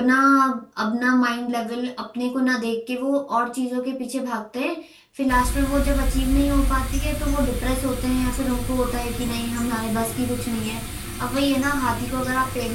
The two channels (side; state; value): both; identical; correlation 1.00